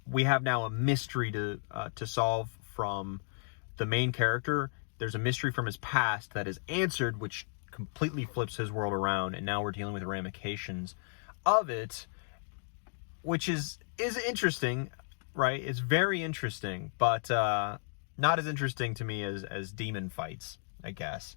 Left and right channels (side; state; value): right; silent; digital silence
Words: now a mystery to solve from the main character. There's a mystery from his past that is answered, which completely flips his world around, and now we're dealing with the ramifications of it, which is interesting. Right, it's very interesting, but not as interesting to me as demon fights, I guess.